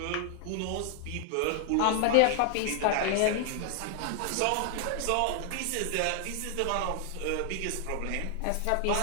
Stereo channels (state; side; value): different; both; correlation 0.00